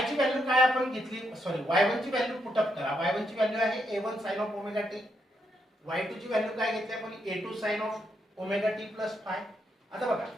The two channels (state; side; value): normal; both; correlation 0.79